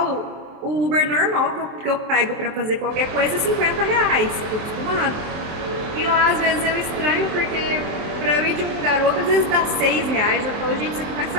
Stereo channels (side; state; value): left; late; 23 ms